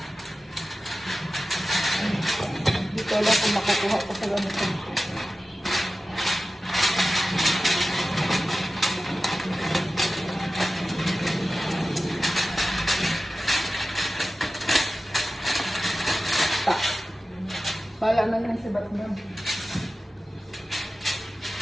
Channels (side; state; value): both; normal; correlation 0.95